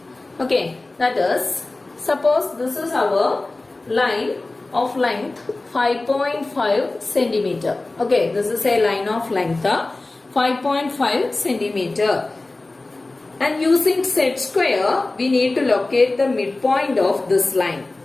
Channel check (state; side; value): quieter; right; 3.1 dB